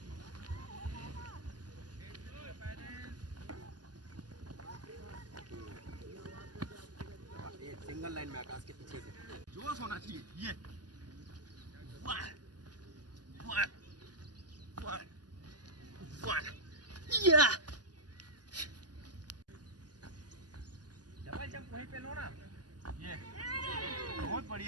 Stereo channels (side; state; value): left; late; 0.69 ms